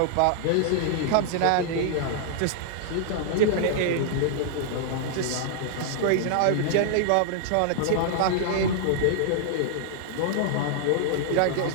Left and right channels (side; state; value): both; different; correlation -0.01